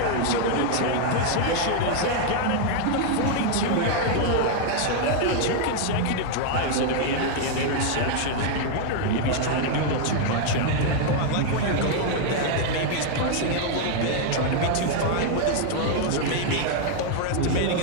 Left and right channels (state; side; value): different; both; correlation 0.00